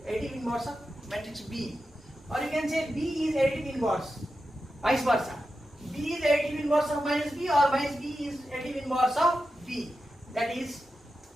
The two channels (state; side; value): normal; both; correlation 0.90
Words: matrix B. Or you can say B is additive inverse, vice versa. B is additive inverse of minus B, or minus B is additive inverse of B. That is,